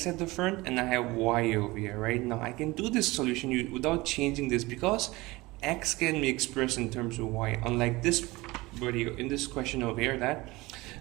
at the front and I have y over here, right? Now I can do this solution without changing this because x can be expressed in terms of y, unlike this video in this question over here that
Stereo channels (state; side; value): quieter; left; 21.4 dB